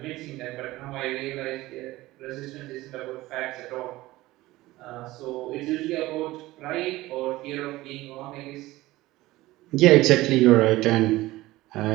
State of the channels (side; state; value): left; quieter; 18.1 dB